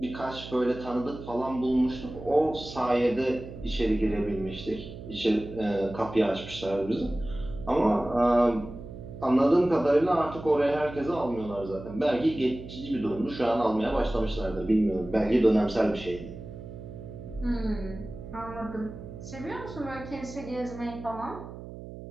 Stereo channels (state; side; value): noise; right; hum, 12 dB below the sound